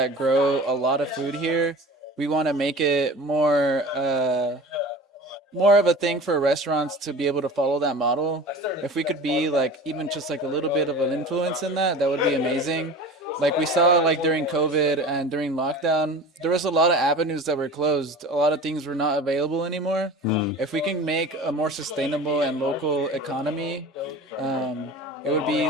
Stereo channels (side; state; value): both; normal; correlation 0.37